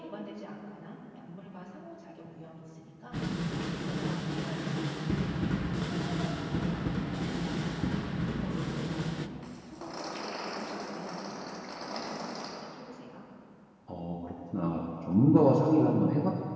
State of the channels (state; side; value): identical; both; correlation 1.00